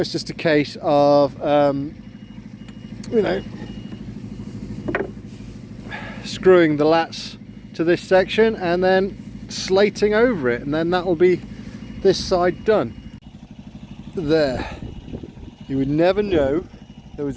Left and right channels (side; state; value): both; identical; correlation 1.00